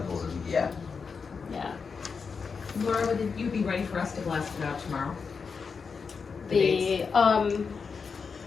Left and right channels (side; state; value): right; quieter; 5.4 dB